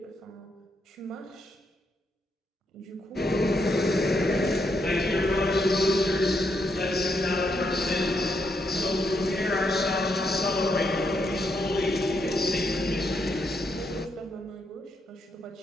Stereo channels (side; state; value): both; normal; correlation 0.78